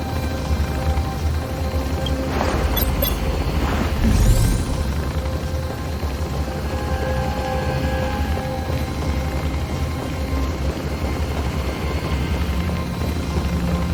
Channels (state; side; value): identical; both; correlation 1.00